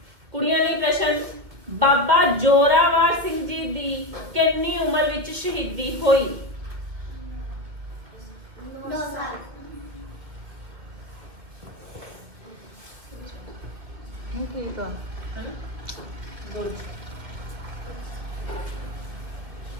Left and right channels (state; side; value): late; left; 2.4 ms